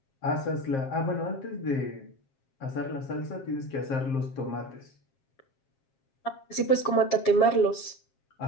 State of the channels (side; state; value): right; late; 7.4 ms